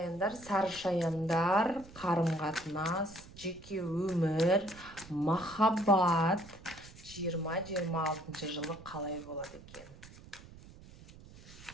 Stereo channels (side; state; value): right; noise; rumble, 19 dB below the sound